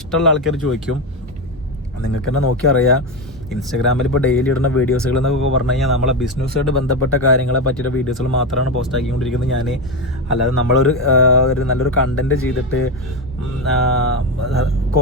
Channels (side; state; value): both; normal; correlation 0.14